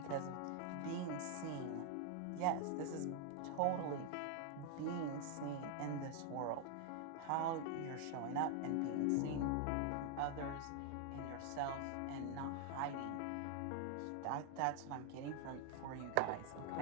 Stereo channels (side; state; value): both; different; correlation 0.00